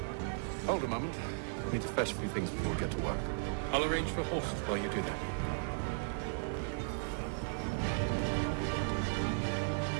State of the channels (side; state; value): left; silent; digital silence